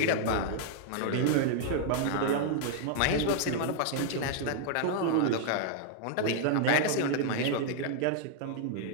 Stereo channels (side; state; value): both; different; correlation 0.00